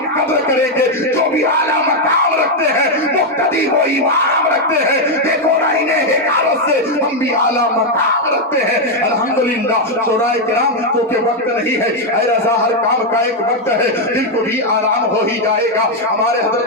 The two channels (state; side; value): normal; both; correlation 0.02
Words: قدر کریں گے۔ جو بھی اعلیٰ مقام رکھتے ہیں، مقتدی و امام رکھتے ہیں، دیکھو نا انہیں حکارت سے ہم بھی اعلیٰ مقام رکھتے ہیں الحمدللہ۔ شورائے کرام کیونکہ وقت نہیں ہے، اے رضا ہر کام کا ایک وقت ہے، دل کو بھی آرام ہو ہی جائے گا۔ ہمارے